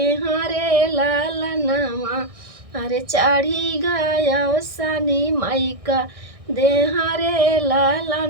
रे लाला नावा अरे चढ़ी गया सानी मई का देहा रे लाला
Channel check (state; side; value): late; left; 1.6 ms